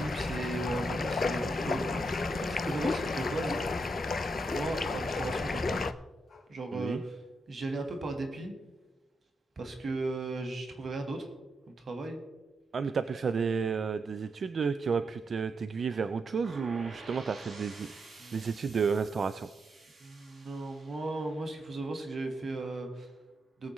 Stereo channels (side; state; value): both; normal; correlation 0.82